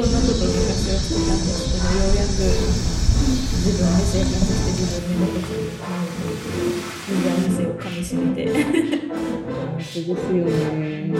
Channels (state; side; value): identical; both; correlation 1.00